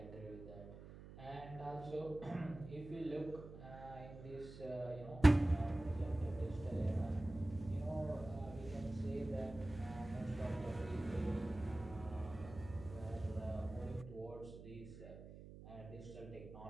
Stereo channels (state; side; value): noise; right; hum, 14 dB below the sound